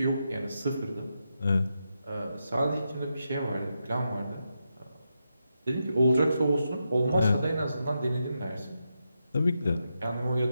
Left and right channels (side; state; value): both; inverted; correlation -0.86